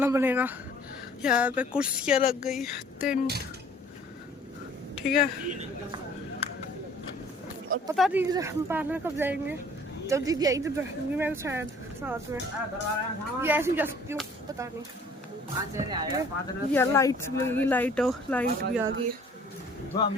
बनेगा। यहाँ पे कुर्सियाँ लग गई, टेंट। ठीक है, और पता नहीं हम पार्लर कब जाएंगे, जब दीदी आई तब जाऊंगी मैं शायद साथ में, या ऐसे ही जा सकती हूँ, पता नहीं। या लाइट लगेगी, लाइट भी आ गई।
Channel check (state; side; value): normal; both; correlation 0.54